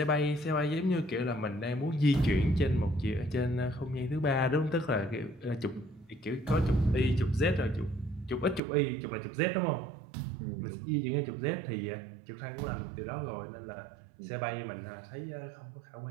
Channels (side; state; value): left; drops out; at 8.6 s